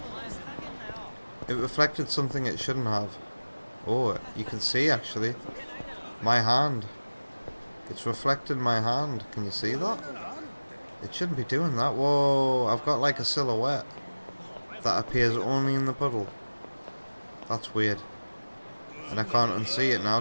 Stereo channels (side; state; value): both; inverted; correlation -1.00